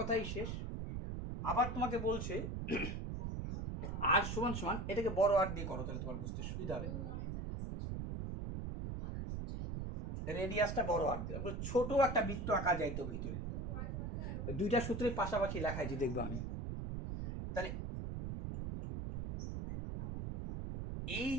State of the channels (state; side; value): noise; right; rumble, 4 dB below the sound